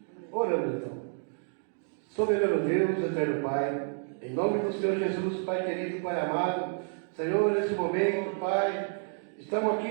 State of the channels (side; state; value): left; silent; 58 dB below the other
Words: Oramos então. Soberano Deus, eterno Pai, em nome do Senhor Jesus, Pai querido, Pai amado, Senhor, nesse momento, Pai, estamos